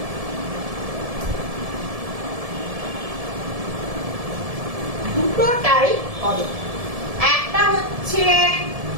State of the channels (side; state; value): left; late; 1.7 ms